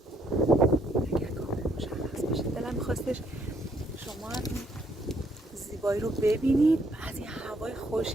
اگر کامل مشخص باشه. دلم می‌خواستش شما هم زیبایی رو ببینید، از این هوای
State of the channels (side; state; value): both; normal; correlation 0.69